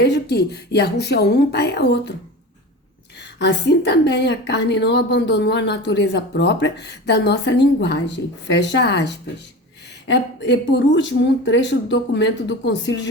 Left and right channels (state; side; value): normal; both; correlation 0.31